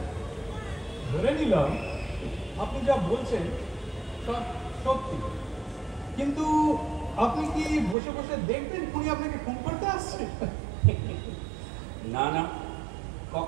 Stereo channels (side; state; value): left; drops out; at 8.0 s